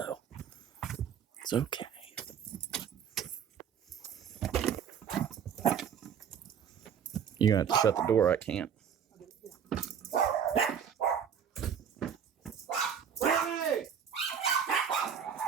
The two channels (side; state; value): left; quieter; 7.9 dB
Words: It's okay. You're gonna have to shut the door. I can't. Hey,